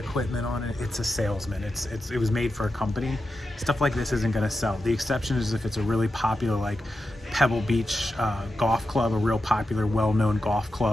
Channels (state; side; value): normal; both; correlation 0.90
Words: on it? It's a salesman. It was made for a company. Stuff like this isn't going to sell. The exception is if it's a really popular, like Pebble Beach golf club, a real popular, well-known golf